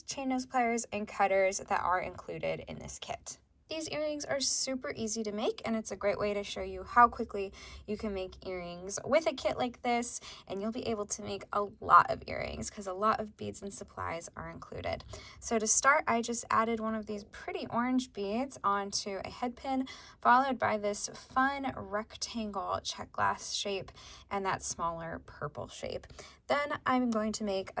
chain nose pliers, and cutters that are included in this kit. These earrings are super easy to make, and it's a great way to show you how quickly you can make earrings with a kit like this, and you'll be able to make a lot of earrings because a lot of beads and supplies are included. So to start, I just added one of these pretty orange beads onto a head pin, followed by this fun rectangle check glass shape and that smaller purple shape. Then I'm going to make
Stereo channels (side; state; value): both; identical; correlation 1.00